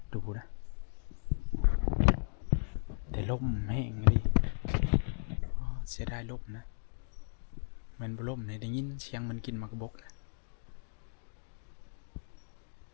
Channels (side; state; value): right; silent; digital silence